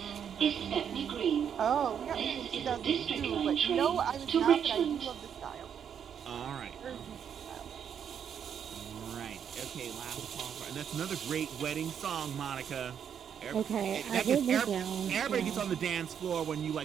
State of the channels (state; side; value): quieter; left; 8.2 dB